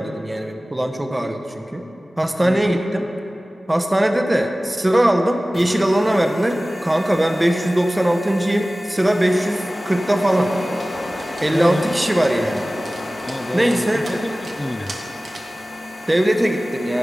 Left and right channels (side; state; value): both; normal; correlation 0.97